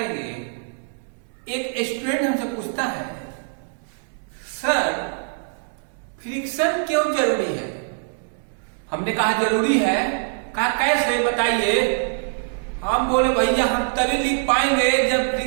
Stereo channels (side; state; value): left; silent; 63 dB below the other